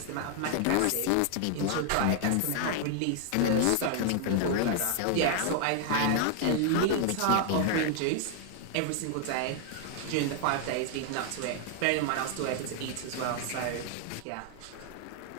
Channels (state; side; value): different; both; correlation 0.00